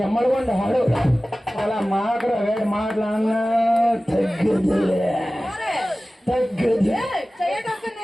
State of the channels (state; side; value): normal; both; correlation 0.97